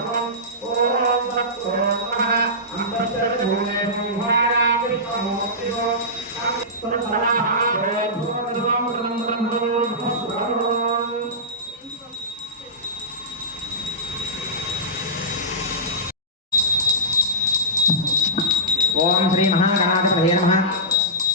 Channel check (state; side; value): normal; both; correlation -0.16